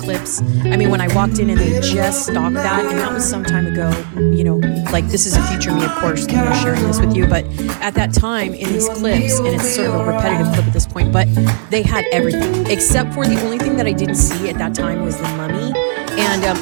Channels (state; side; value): silent; left; digital silence